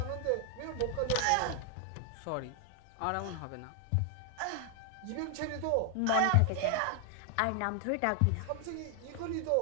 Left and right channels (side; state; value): both; different; correlation 0.00